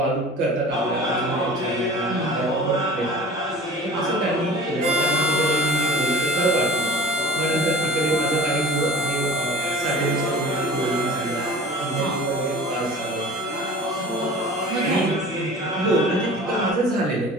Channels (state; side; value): normal; both; correlation 0.41